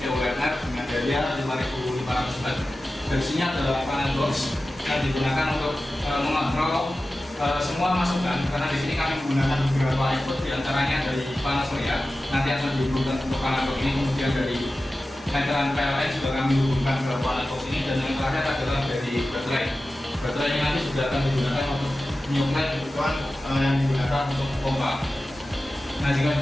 Werner dengan daya 5.500 watt. Dari sini adalah panel box yang digunakan untuk mengontrol semua masukan, karena di sini kami menggunakan beberapa input diantaranya dari panel surya nanti akan dihubungkan untuk panel box ini, kemudian dari meteran PLN juga kami hubungkan ke panel box ini, dan yang terakhir adalah dari baterai. Baterai ini nanti sudah akan digunakan untuk menyuplai kebutuhan yang digunakan untuk pompa. Nah, jika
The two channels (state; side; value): normal; both; correlation 0.95